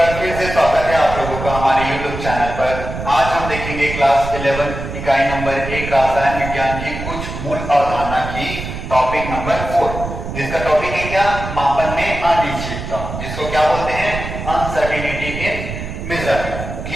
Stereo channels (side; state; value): right; noise; rumble, 7 dB below the sound